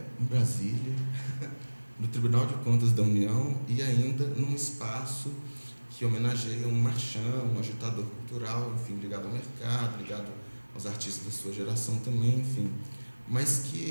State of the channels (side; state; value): both; inverted; correlation -1.00